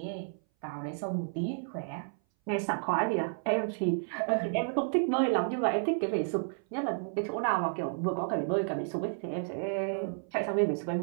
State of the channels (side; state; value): left; silent; 57 dB below the other